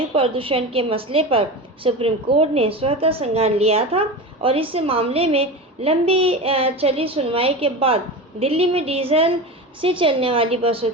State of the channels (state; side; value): normal; both; correlation 0.26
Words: प्रदूषण के मसले पर सुप्रीम कोर्ट ने स्वतः संज्ञान लिया था और इस मामले में लंबी चली सुनवाई के बाद दिल्ली में डीजल से चलने वाली बसों